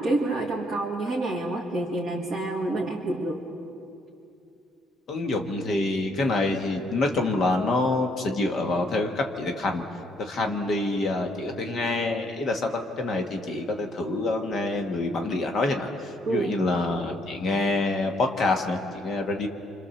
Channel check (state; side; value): normal; both; correlation 0.69